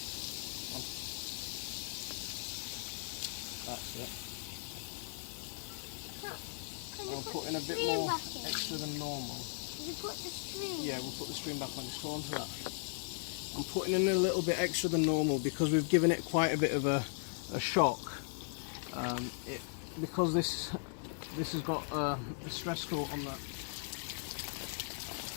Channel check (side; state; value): right; silent; digital silence